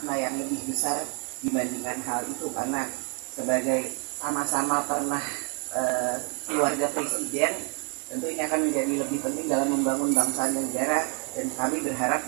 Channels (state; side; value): quieter; left; 34.7 dB